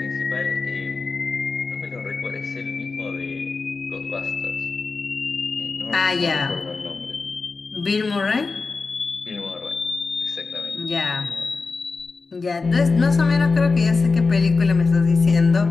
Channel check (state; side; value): quieter; right; 4.2 dB